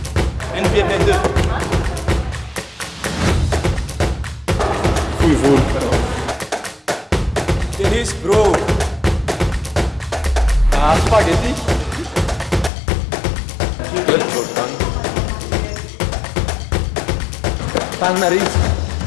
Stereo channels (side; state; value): right; drops out; at 12.7 s